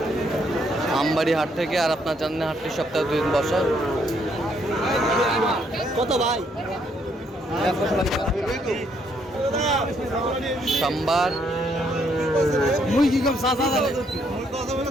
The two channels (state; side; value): normal; both; correlation 0.71